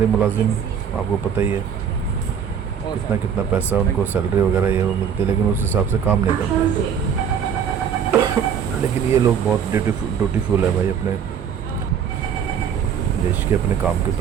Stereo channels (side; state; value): left; quieter; 7.8 dB